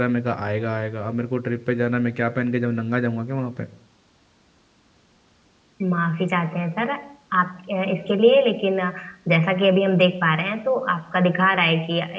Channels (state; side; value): identical; both; correlation 1.00